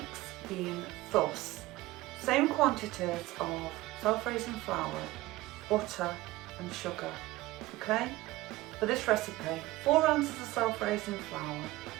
being thus: same quantities of self-raising flour, butter and sugar. Okay, for this recipe, 4 ounces of self-raising flour,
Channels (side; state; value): left; quieter; 18.3 dB